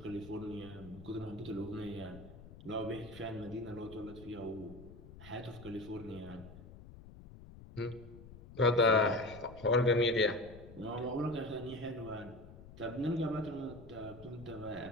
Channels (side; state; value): left; noise; rumble, 16 dB below the sound